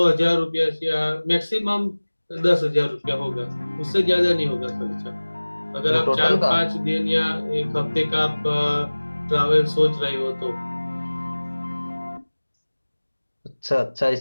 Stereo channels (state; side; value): inverted; both; correlation -1.00